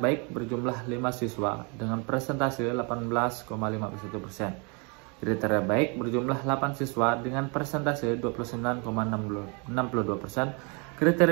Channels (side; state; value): left; quieter; 33.0 dB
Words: baik berjumlah 5 siswa dengan presentase 18,51%. Kriteria baik berjumlah 8 siswa dengan presentase 29,62%.